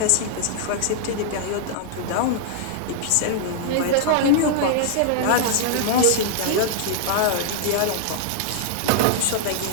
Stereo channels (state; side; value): different; both; correlation -0.01